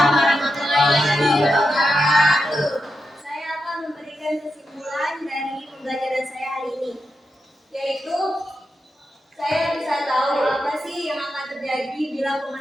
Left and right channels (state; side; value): normal; both; correlation 0.87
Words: warahmatullahi wabarakatuh. Saya akan memberikan kesimpulan dari pembelajaran saya hari ini, yaitu saya bisa tahu apa sih yang akan terjadi bila